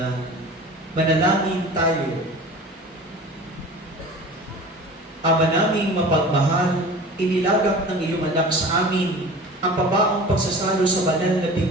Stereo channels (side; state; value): both; normal; correlation 0.39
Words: Manalangin tayo. Ama naming mapagmahal, inilagak ng iyong anak sa amin ang pabaong pagsasalo sa banal na